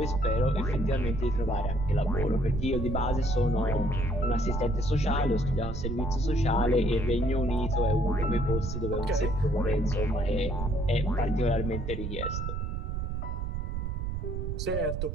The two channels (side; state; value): right; noise; rumble, 3 dB below the sound